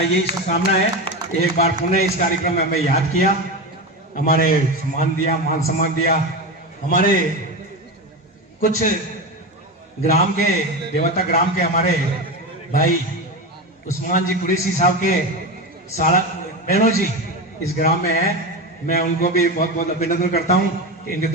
यही शुभकामना है। एक बार पुनः इस कार्यक्रम में मैं याद किया, हमारे सम्मान दिया, मान सम्मान दिया। हमारे कुछ ग्राम के देवता ग्राम के हमारे भाई उस्मान जी कुरैशी साहब के सारा बहनों जी इस ग्राम में है। मैं उनको भी बहुत बहुत अभिनंदन करता हूँ। इनके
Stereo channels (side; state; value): both; normal; correlation 0.20